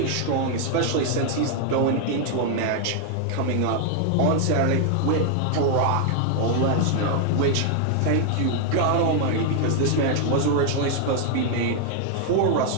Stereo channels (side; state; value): both; different; correlation 0.00